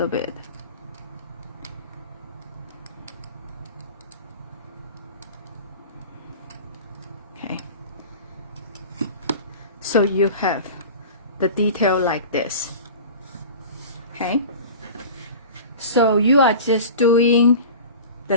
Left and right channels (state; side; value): inverted; both; correlation -0.36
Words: bit. Okay, so you have the detail like this. Okay, so you are just doing the